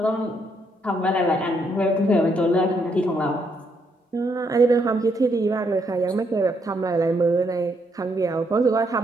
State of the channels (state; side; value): normal; both; correlation 0.74